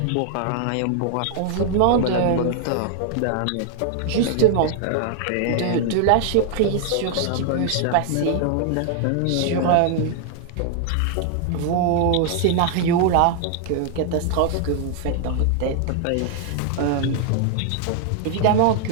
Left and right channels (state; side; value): different; both; correlation 0.00